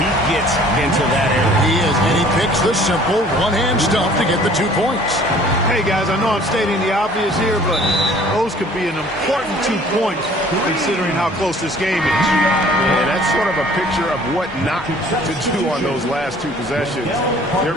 he gets into that area. He is, and he picks the simple one-hand stuff to get the 2 points. Hey, guys, I know I'm stating the obvious here, but those could be an important 2 points considering how close this game is. And that's sort of a picture of what not to do on those last 2 possessions. They're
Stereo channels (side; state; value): both; normal; correlation 0.53